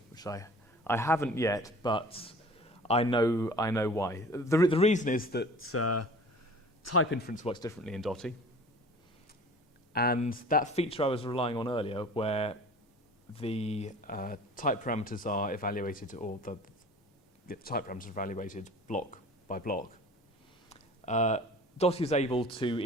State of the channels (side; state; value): both; normal; correlation 0.44